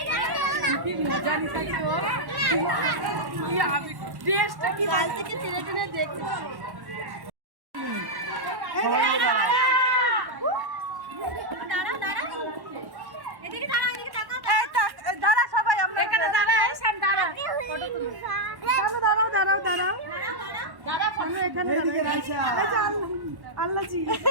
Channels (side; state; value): left; late; 1.1 ms